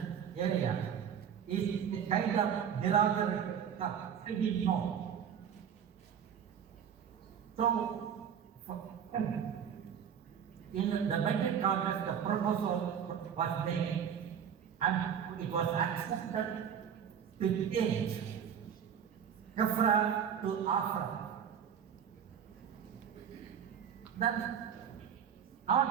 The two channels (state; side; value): quieter; left; 8.2 dB